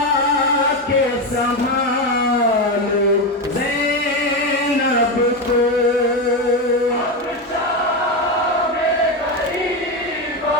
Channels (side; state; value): both; normal; correlation 0.13